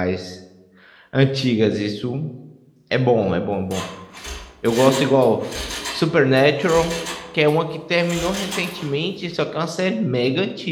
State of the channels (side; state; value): both; identical; correlation 1.00